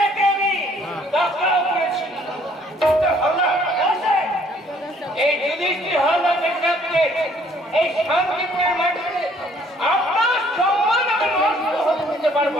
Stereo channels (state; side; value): normal; both; correlation 0.61